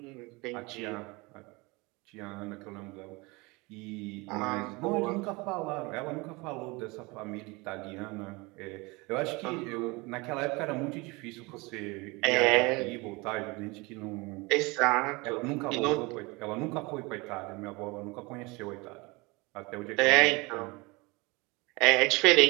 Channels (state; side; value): quieter; left; 25.3 dB